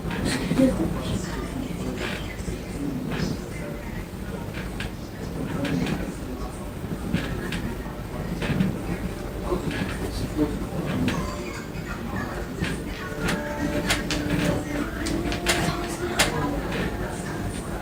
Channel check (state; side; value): identical; both; correlation 1.00